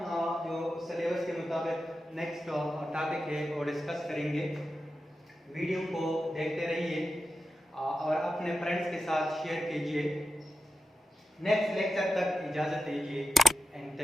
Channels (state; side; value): normal; both; correlation 0.91